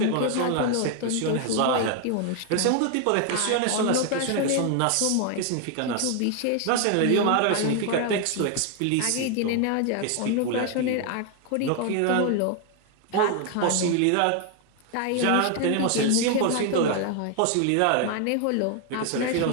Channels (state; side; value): different; both; correlation 0.01